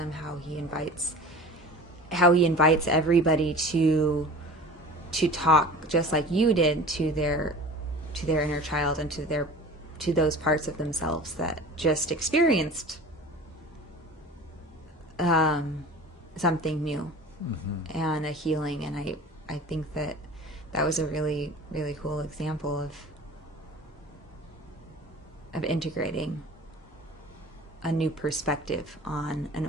how he invites everybody to talk just like you did to their inner child and to those parts of themselves that just experienced something new and a healing. And I think that was a really, really cool example of integrating a new perspective on an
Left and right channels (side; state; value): both; normal; correlation 0.40